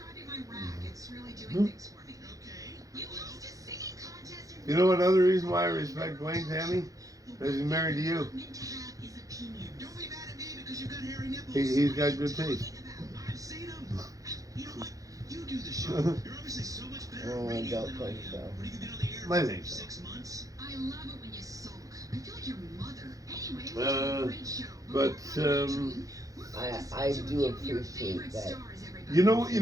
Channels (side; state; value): left; late; 0.17 ms